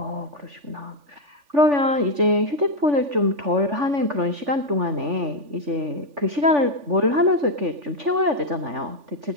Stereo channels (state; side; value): late; left; 3.4 ms